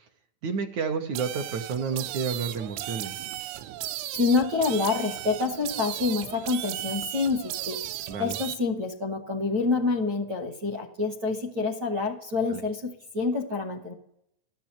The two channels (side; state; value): left; late; 9.0 ms